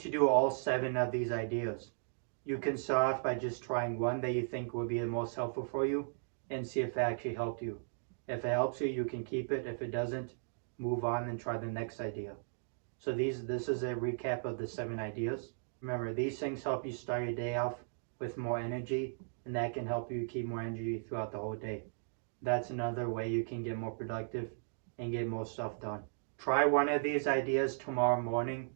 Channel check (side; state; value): left; silent; digital silence